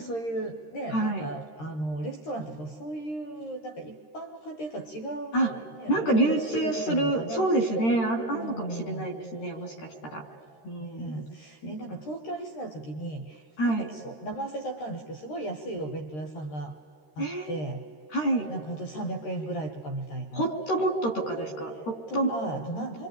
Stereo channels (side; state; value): right; late; 13 ms